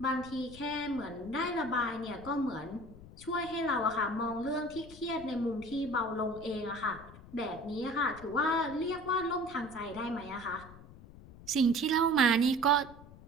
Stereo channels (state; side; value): noise; left; rumble, 18 dB below the sound